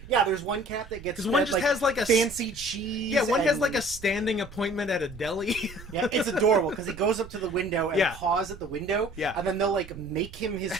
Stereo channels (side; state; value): right; noise; rumble, 17 dB below the sound